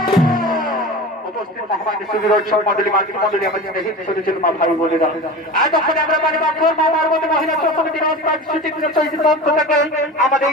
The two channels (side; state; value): both; normal; correlation 0.31